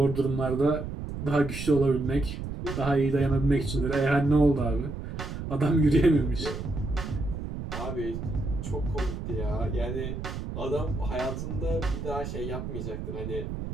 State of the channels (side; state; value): right; noise; rumble, 6 dB below the sound